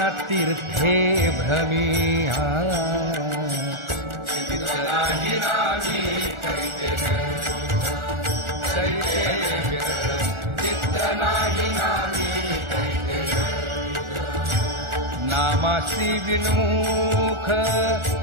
तीर्थे भ्रमिया चित्तनाहि नामी चित्तनाहि नामी नामासी विन्मुख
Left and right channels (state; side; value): late; left; 1.4 ms